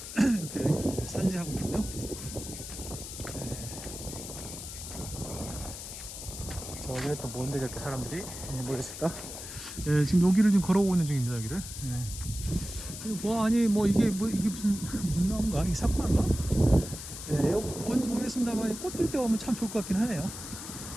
이렇게 산지하고 있군요. 저기는 또 뭔데 저렇게 사람들이 모였을까? 지금 여기를 지금 걸어오고 있는 중입니다. 여기를. 이게 무슨 나무인가? 이게 사쿠라인가? 뭔지 모르겠습니다만 꽃 필 때 오면 참 좋을 것 같긴 하네요.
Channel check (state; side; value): noise; left; hiss, 10 dB below the sound